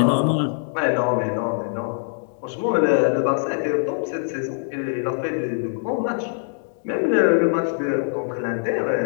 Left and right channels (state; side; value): silent; right; digital silence